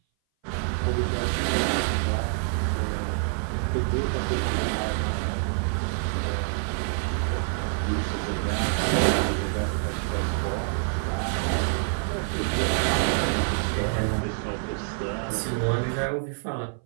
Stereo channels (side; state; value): left; silent; 58 dB below the other